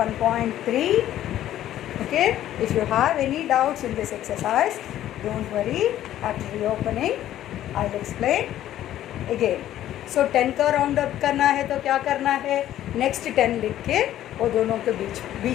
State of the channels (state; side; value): quieter; right; 12.5 dB